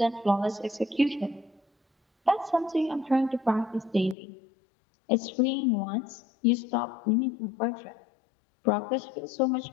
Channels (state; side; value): drops out; right; at 4.2 s